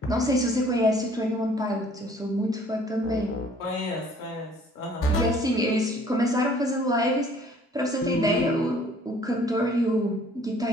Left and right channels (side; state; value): both; normal; correlation 0.56